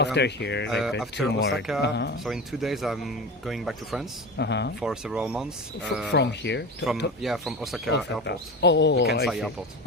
here, after 2 more. Osaka. So in 2 days, I'm going back to France for several months. From here? From Osaka Airport. The Kansai Airport.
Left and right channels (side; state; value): both; normal; correlation 0.27